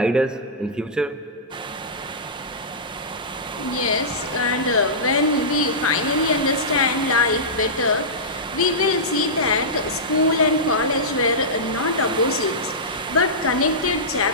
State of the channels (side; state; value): both; normal; correlation -0.15